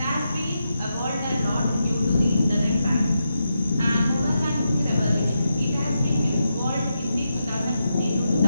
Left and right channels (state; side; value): inverted; both; correlation -0.86